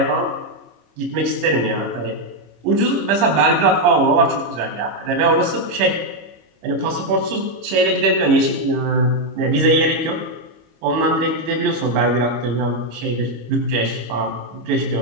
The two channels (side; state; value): left; late; 26 ms